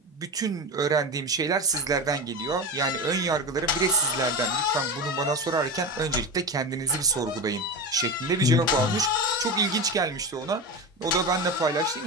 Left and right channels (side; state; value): both; normal; correlation 0.23